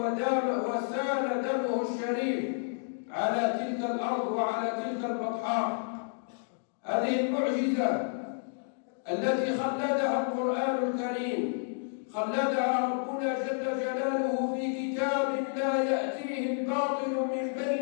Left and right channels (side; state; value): right; silent; digital silence